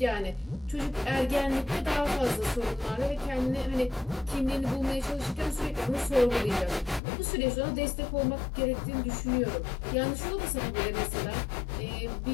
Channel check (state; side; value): drops out; right; at 7.0 s